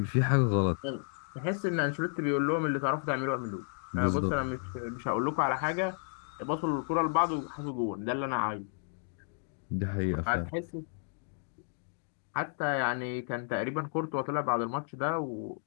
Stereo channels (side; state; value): right; silent; digital silence